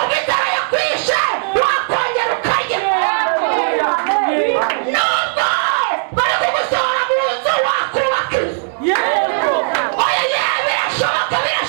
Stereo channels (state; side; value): silent; left; digital silence